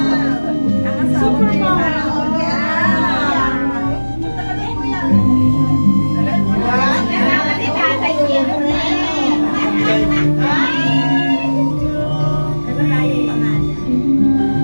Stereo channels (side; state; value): both; inverted; correlation -1.00